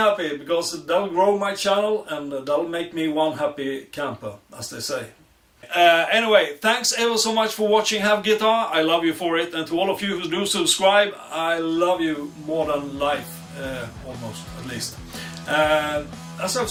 because that'll grow my channel and that'll make me one happy camper, as they say. Anyway, thanks ever so much for watching Have Guitar. I love you for it, and to all of you who do subscribe, I love you more than life, almost, at least. As I've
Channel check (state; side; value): identical; both; correlation 1.00